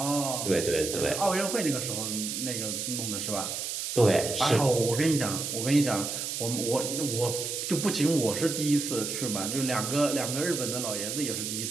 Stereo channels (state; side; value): noise; right; hiss, 4 dB below the sound